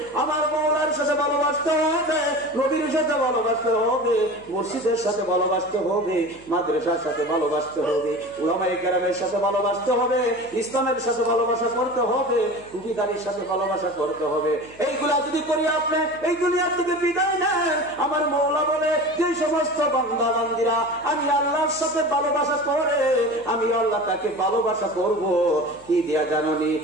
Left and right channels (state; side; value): noise; left; hum, 26 dB below the sound